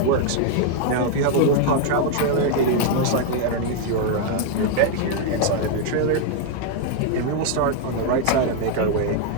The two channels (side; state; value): both; different; correlation 0.00